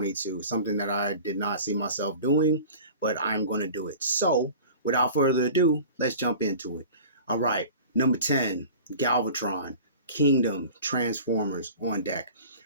something that I did not see myself doing, but I'm going to do it. So, without further ado, let's jump into it. All right, number 10, Galvatron, Kingdom, Transformers on deck.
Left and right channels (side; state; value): both; inverted; correlation -0.41